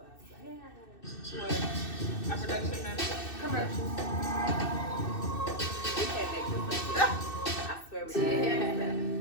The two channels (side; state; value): right; late; 2.6 ms